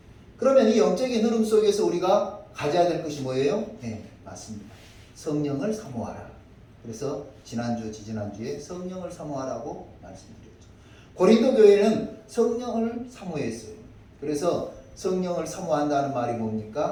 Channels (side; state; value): both; identical; correlation 1.00